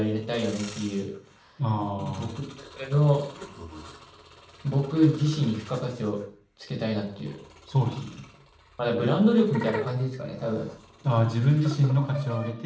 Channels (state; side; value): identical; both; correlation 1.00